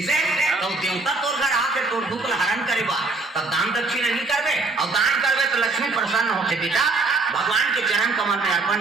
तो देवता तोर घर आके तोर दुख हरण करेगा तब दान दक्षिणा नहीं करबे और दान करबे तो लक्ष्मी प्रसन्न होते बेटा भगवान के चरण कमल में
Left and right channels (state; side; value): quieter; left; 3.6 dB